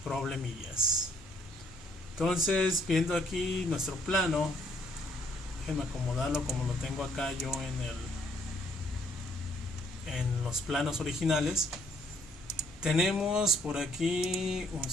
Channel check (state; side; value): normal; both; correlation 0.66